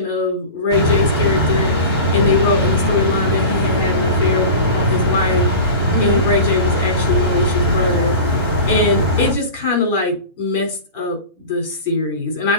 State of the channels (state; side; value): inverted; both; correlation -0.33